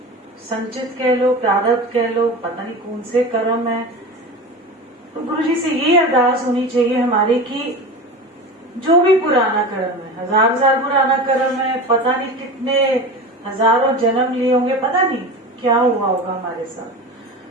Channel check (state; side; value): normal; both; correlation 0.30